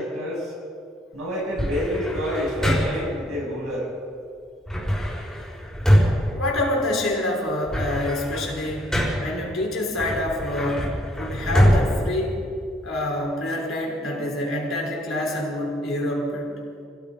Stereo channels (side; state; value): both; normal; correlation 0.69